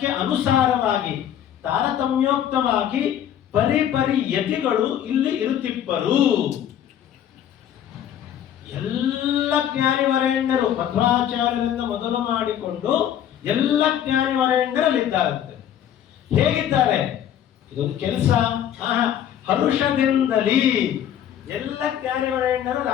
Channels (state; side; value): quieter; right; 10.3 dB